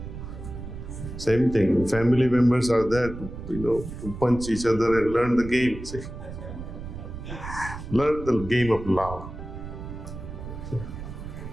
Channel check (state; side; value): noise; right; rumble, 10 dB below the sound